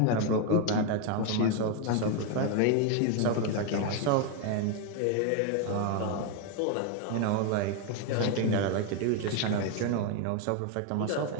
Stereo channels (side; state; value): both; different; correlation 0.01